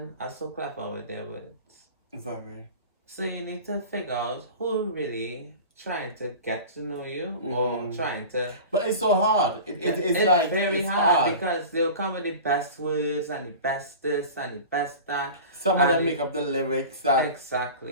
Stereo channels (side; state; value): both; inverted; correlation -0.35